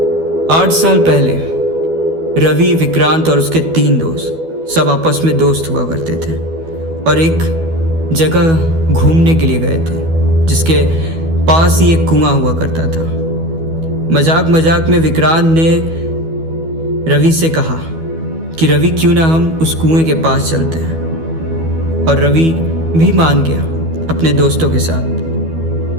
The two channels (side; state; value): left; late; 12 ms